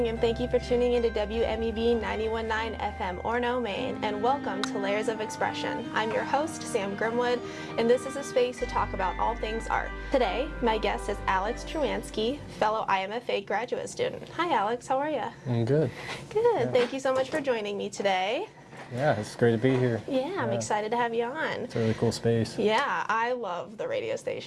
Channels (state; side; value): identical; both; correlation 1.00